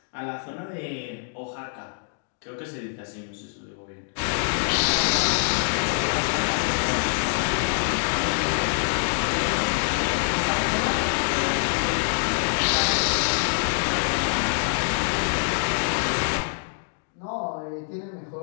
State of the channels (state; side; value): silent; right; digital silence